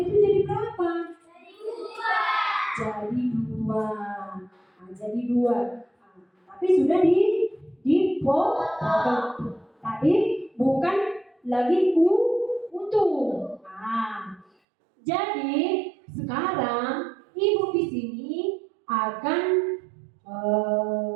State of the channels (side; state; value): left; drops out; at 14.5 s